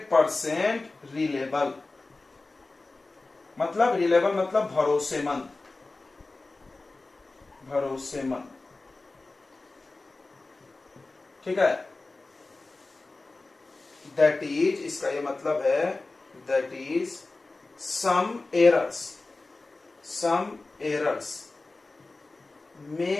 reliable. मतलब रिलेबल मतलब भरोसेमंद, ठीक है। दैट इज, इसका ये मतलब है, दैट इज सम एरर्स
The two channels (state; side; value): quieter; right; 3.3 dB